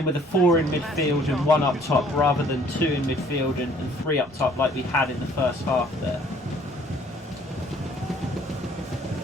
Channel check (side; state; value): both; normal; correlation 0.58